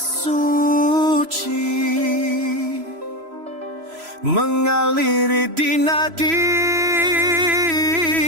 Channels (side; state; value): left; late; 3.0 ms